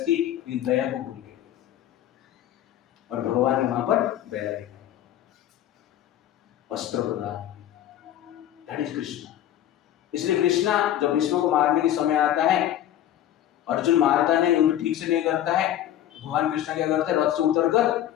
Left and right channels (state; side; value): quieter; right; 11.8 dB